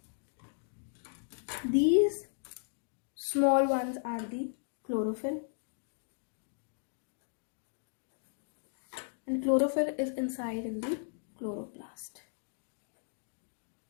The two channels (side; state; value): right; silent; digital silence